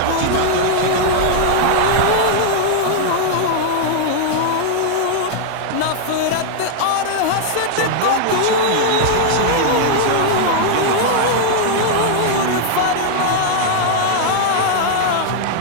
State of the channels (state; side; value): different; both; correlation -0.01